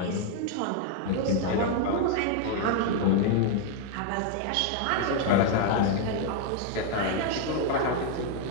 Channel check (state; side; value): different; both; correlation 0.00